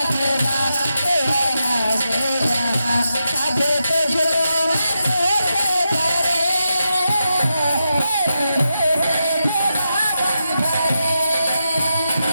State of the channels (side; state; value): both; inverted; correlation -0.87